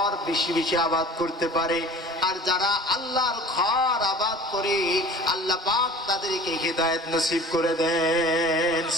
বেশি বেশি আবাদ করতে পারে। আর যারা আল্লাহর ঘর আবাদ করে আল্লাহ পাক তাদেরকে হিদায়াত নসিব করে দেন।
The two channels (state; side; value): normal; both; correlation 0.42